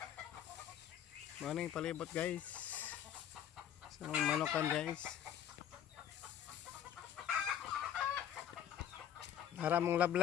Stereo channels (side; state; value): right; quieter; 10.0 dB